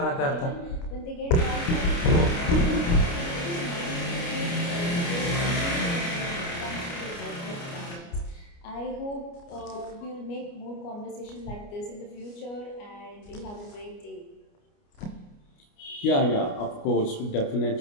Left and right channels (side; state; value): right; late; 29 ms